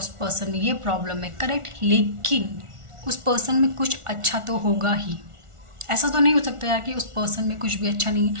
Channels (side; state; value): left; late; 1.4 ms